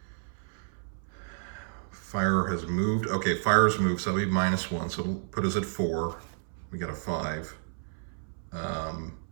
Fire has moved. Okay, fire's moved, so that would be -1, so it'll put us at 4. We got a 5.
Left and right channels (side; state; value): left; silent; 57 dB below the other